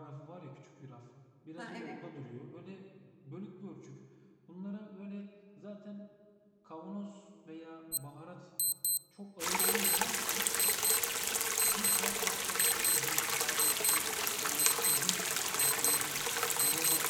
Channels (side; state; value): both; identical; correlation 1.00